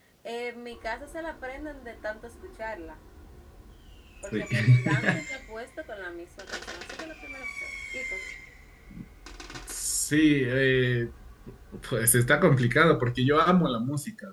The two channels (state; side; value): identical; both; correlation 1.00